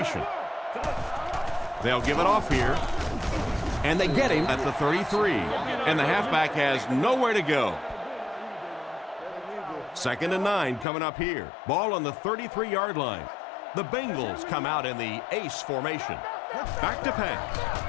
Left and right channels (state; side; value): drops out; right; at 10.9 s